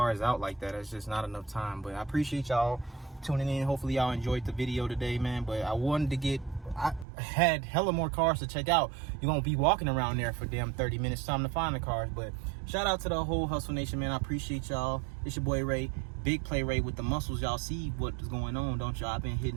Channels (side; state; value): left; drops out; at 7.1 s